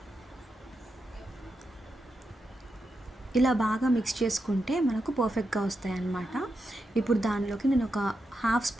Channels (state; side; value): normal; both; correlation 0.86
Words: ఇలా బాగా మిక్స్ చేసుకుంటే మనకు పర్ఫెక్ట్గా వస్తాయి అన్నమాట. ఇప్పుడు దానిలోకి నేను ఒక 1/2